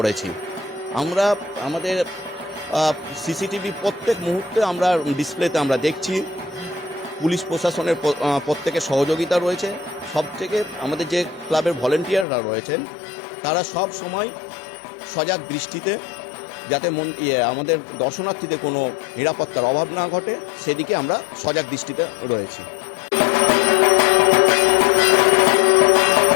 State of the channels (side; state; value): right; drops out; at 12.2 s